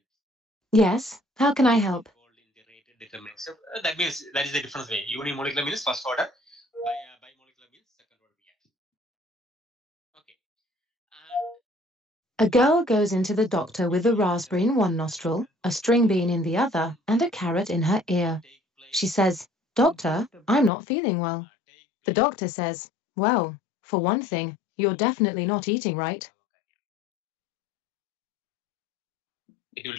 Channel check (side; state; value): right; drops out; at 20.7 s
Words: Yes, how can I help? Involved in the rate determinant step. That means that is the difference way. Unimolecular means first order. Bimolecular means second order reaction. Okay. A girl goes into the doctor with a raspberry in one nostril, a string bean in the other, and a carrot in her ear. She says, "Doctor, I'm not feeling well." The doctor says, "Well, for one thing, you're definitely not eating right." It will